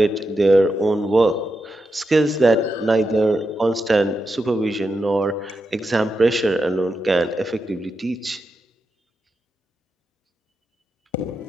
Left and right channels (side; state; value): both; normal; correlation 0.87